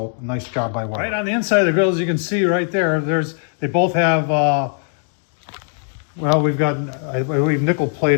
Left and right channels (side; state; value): right; silent; 56 dB below the other